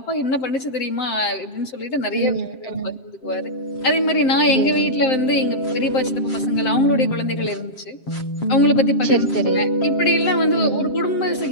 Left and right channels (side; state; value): right; late; 7.8 ms